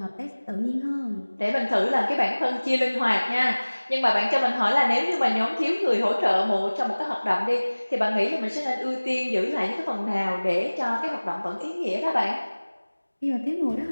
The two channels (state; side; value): inverted; both; correlation -1.00